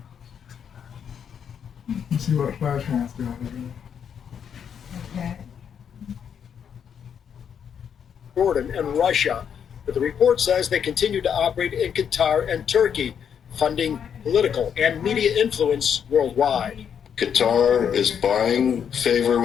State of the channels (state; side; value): quieter; right; 7.9 dB